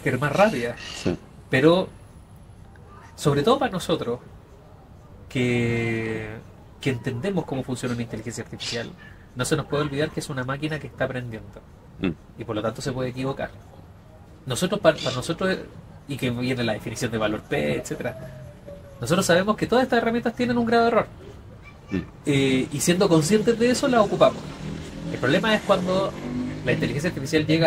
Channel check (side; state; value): both; identical; correlation 1.00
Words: es más rápida. Sí. Pero, sobre todo para nosotros, que entendemos cómo funciona una inteligencia artificial, no se nos puede olvidar que es una máquina que está aprendiendo Mm. y por lo tanto se puede equivocar. Nosotros, para nosotros, y que viene la definición de valor P, etcétera, nosotros sabemos que todas estas herramientas tienen un grado de error. Y siendo conscientes de eso, las ocupamos. El problema es cuando la inteligencia artificial